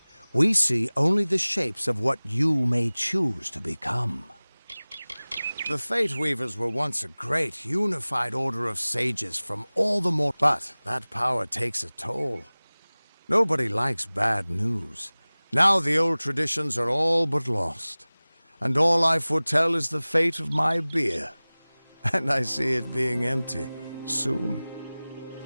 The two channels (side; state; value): both; inverted; correlation -0.99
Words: we see only the shapes of what you may choose to become. The Fate Weavers were once a great, unified order of sages from all the more... But that power takes a toll. Nobody likes bad news. Now the old traditions are all but lost. And all I foretell is the fate of my beer. And I see it being empty soon.